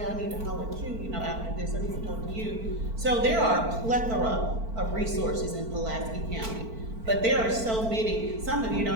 I need to holler at you, after this, I need to talk to you. So there are a plethora of resources in Pulaski County. But there are so many, some of you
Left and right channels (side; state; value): left; late; 4.5 ms